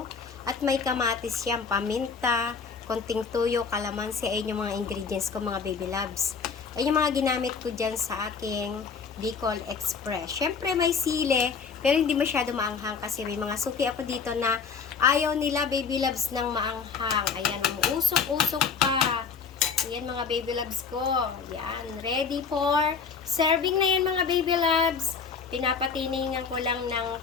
at may kamatis yan, paminta, konting tuyo, kalamansi, ay yung mga ingredients ko mga baby loves. Ay yung mga ginamit ko dyan sa aking Bicol Express. Syempre may sili, pero hindi masyado maanghang kasi may mga suki ako dito na ayaw nila baby loves ng maanghang. Ayan, umuusok-usok pa. Ayan mga baby loves ko. Ayan, ready for serving na yan mga baby loves. Pinapatiningan ko lang ng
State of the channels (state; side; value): quieter; right; 5.8 dB